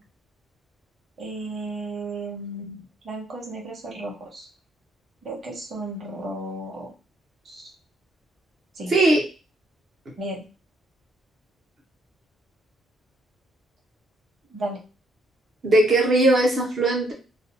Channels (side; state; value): both; normal; correlation 0.69